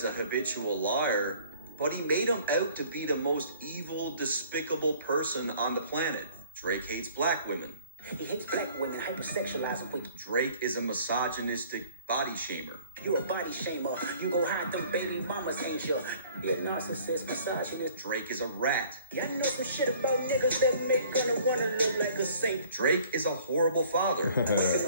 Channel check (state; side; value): inverted; both; correlation -0.54